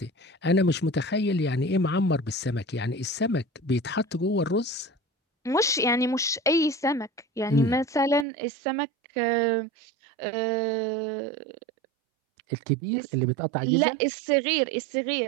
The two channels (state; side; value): drops out; left; at 8.2 s